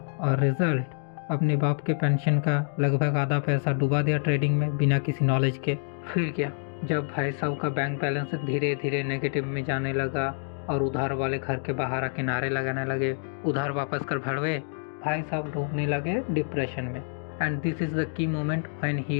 और रिजल्ट अपने बाप के पेंशन का लगभग आधा पैसा डुबा दिया ट्रेडिंग में बिना किसी नॉलेज के। फिर क्या, जब भाई साहब का बैंक बैलेंस धीरे धीरे नेगेटिव में जाने लगा और उधार वाले घर के बाहर आके नारे लगाने लगे, उधार वापस कर भड़वे, भाई साहब डूबने लगे डिप्रेशन में। And this is the key moment when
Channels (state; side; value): silent; right; digital silence